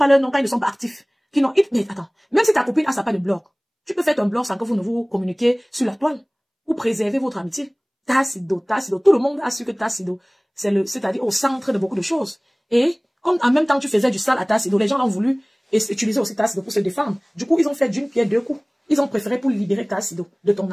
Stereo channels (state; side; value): identical; both; correlation 1.00